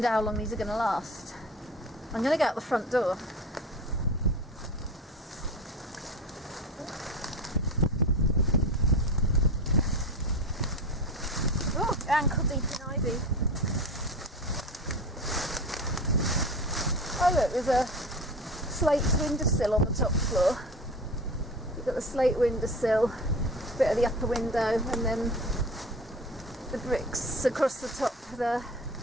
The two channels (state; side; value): normal; both; correlation 0.32